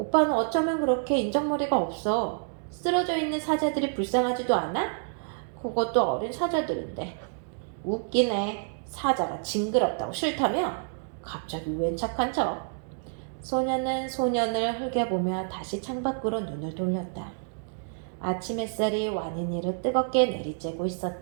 어쩌면 그렇게 인정머리가 없어. 쓰러져 있는 사자들이 불쌍하지도 않아? 그것도 어린 사자들인데. 웃기네. 사자가 징그럽다고 싫다며? 갑자기 웬 착한 척? 소녀는 소년을 흘겨보며 다시 창밖으로 눈을 돌렸다. 아침 햇살이 완인이를 뜨겁게 내리쬐고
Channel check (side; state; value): left; silent; digital silence